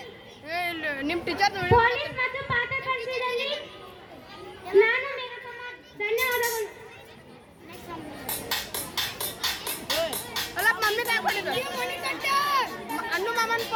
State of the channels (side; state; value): both; identical; correlation 1.00